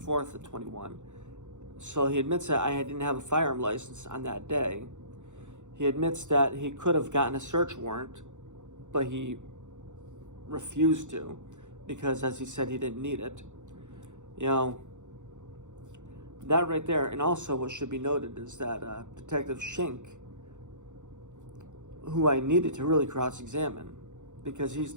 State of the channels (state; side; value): late; left; 0.85 ms